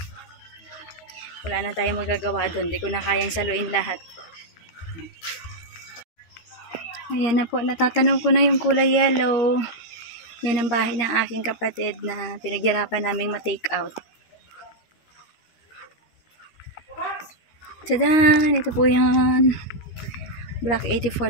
Wala na tayong magagawa doon. Hindi ko na kayang saluin lahat. Ayan na po. Natatanaw ko na yung kulay yellow. Yan ang bahay ng aking kapatid na pinaghirapan naming ma-take out. Tadaan! Ito po yan. Block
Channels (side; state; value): right; late; 13 ms